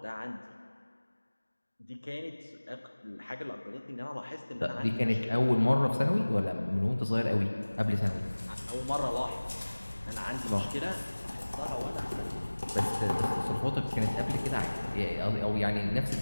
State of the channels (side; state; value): both; inverted; correlation -1.00